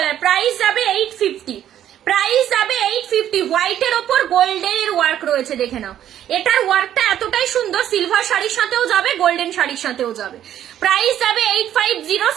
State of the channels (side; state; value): left; quieter; 11.0 dB